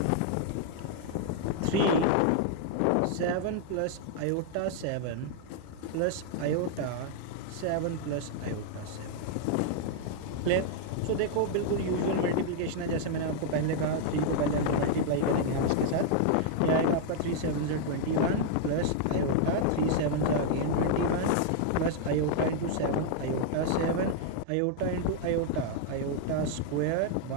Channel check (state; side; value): different; both; correlation 0.00